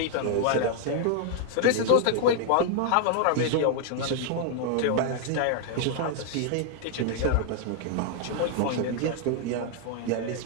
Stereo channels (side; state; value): both; different; correlation 0.00